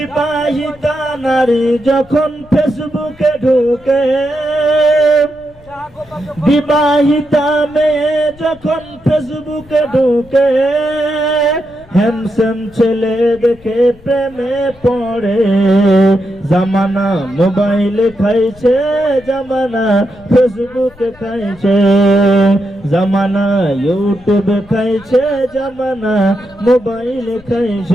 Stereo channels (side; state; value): left; noise; rumble, 25 dB below the sound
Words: নারী যখন ফেসবুকে ঢুকে, বিবাহিতা মেয়ে যখন ফেসবুকে ঢুকে, হ্যান্ডসাম ছেলে দেখে প্রেমে পড়ে, জামানা মোবাইলে খাইছে, জামানা ফেসবুকে খাইছে, জামানা ইউটিউবে খাইছে, জামানা মোবাইলে